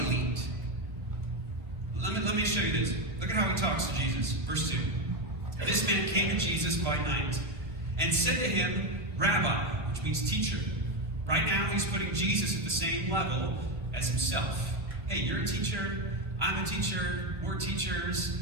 Let me show you this. Look at how he talks to Jesus. Verse 2. This man came to Jesus by night and said to him, Rabbi, which means teacher. Right now he's putting Jesus at the same level as himself. Hey, you're a teacher, I'm a teacher, we're teachers.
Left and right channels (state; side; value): late; left; 1.6 ms